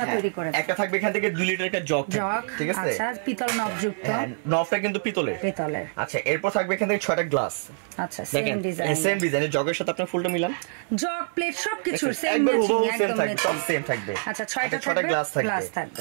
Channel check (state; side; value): silent; left; 61 dB below the other